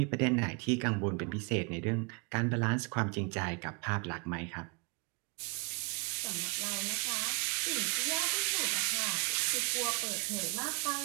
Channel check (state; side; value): quieter; left; 33.8 dB